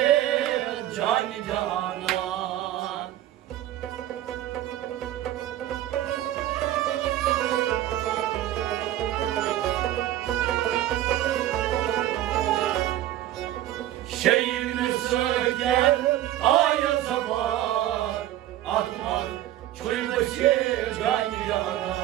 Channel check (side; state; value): left; quieter; 13.5 dB